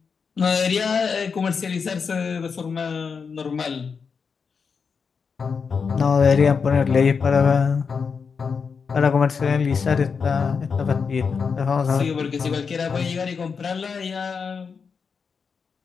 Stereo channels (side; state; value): right; quieter; 5.7 dB